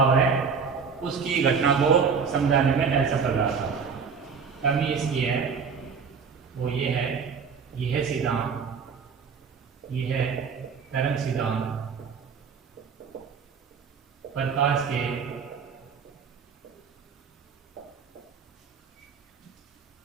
है उसकी घटना को समझाने में असफल रहा था। कमी इसकी है वो ये है, यह सिद्धांत, यह तरंग सिद्धांत प्रकाश के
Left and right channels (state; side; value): quieter; left; 5.9 dB